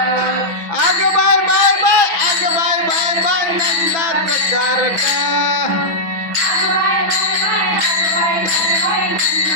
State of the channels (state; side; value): late; left; 6.1 ms